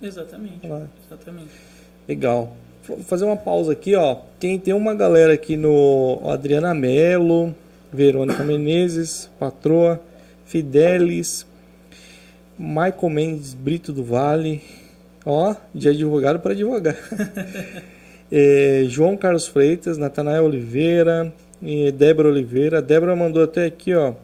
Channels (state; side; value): identical; both; correlation 1.00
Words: Exatamente. Legal. Vou fazer uma pausa aqui, ó. Tem uma galera aqui no Adriana Mello, Verônica Menezes, Patroa, Fidelis, Michael Mendes Brito do Vale, ó, de advogado para advogado. João Carlos Freitas, Natanael Oliveira, Débora Oliveira. Débora mandou até aqui, ó.